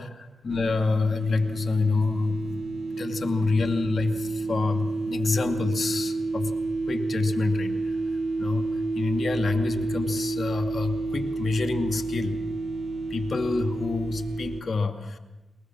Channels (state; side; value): normal; both; correlation 0.90